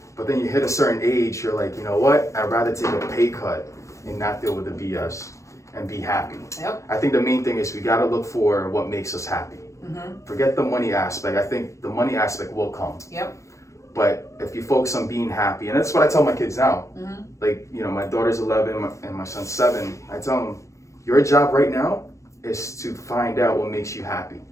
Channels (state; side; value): late; right; 0.15 ms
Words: But then you hit a certain age, you're like, you know what? I'd rather take a pay cut and not deal with the BS and be happy. Yep. I think the main thing is we got to look for what makes us happy. Forget the money aspect. I think the money aspect will come. Yep. But if you focus on being happy, and that's what I tell my kids now. Like, my daughter's 11 and my son's 7. I tell them, your job right now is to find out what makes you happy.